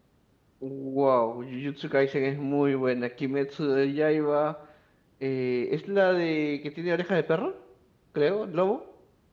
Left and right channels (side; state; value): both; identical; correlation 1.00